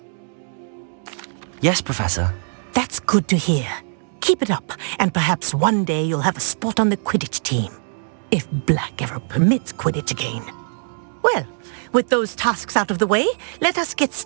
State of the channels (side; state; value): left; silent; digital silence